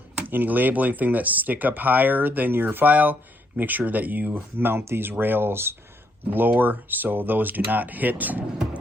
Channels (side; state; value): both; normal; correlation 0.74